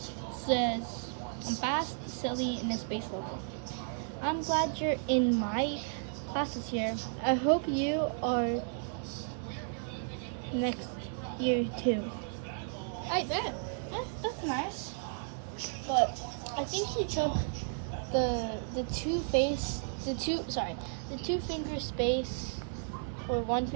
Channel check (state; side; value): silent; left; 55 dB below the other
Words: says I'm fast, silly, and a space level. I'm glad you're in my classes here. I hope you are next year too. I bet. That's nice. But I think he took the two finger space or 1